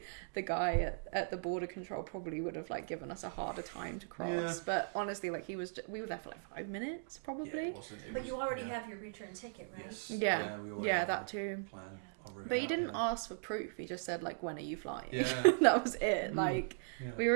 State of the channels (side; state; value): left; silent; digital silence